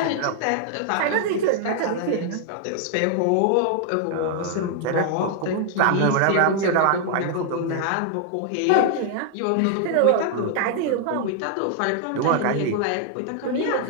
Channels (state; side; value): different; both; correlation 0.00